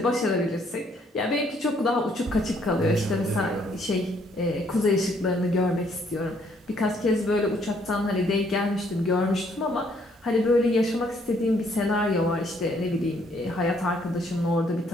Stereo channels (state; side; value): normal; both; correlation 0.67